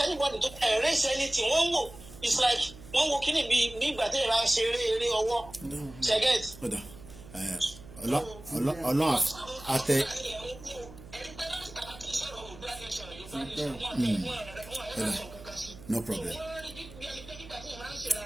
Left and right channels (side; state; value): right; noise; hum, 18 dB below the sound